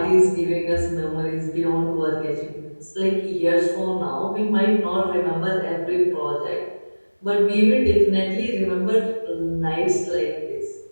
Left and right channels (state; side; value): inverted; both; correlation -1.00